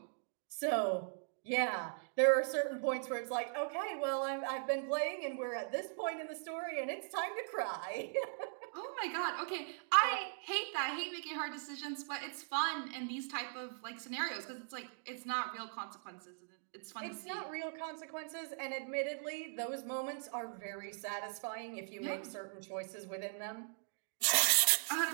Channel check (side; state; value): left; silent; digital silence